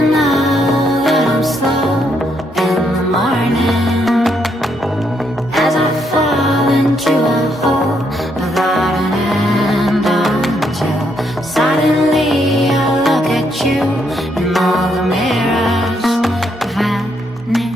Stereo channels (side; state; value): both; normal; correlation 0.75